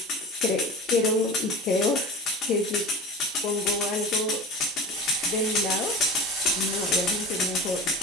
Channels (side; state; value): both; normal; correlation 0.35